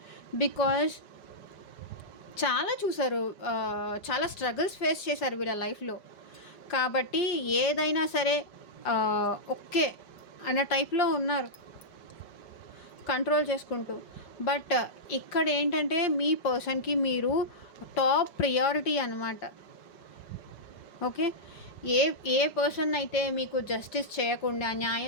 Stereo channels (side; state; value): right; late; 5.1 ms